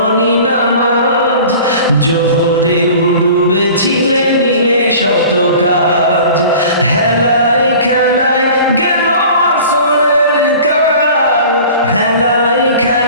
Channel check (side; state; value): both; inverted; correlation -0.43